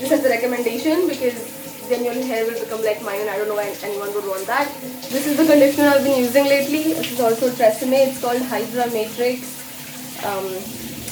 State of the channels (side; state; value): both; identical; correlation 1.00